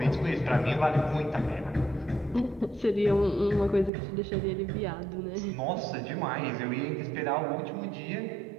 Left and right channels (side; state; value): left; drops out; at 3.9 s